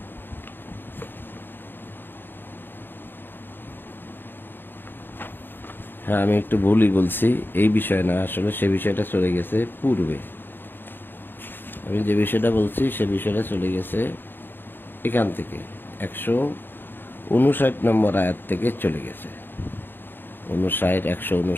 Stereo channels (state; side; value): late; right; 0.096 ms